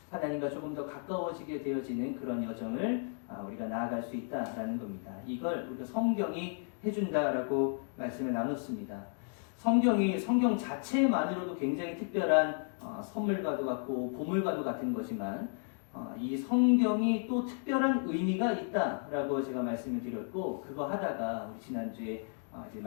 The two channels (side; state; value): right; silent; 55 dB below the other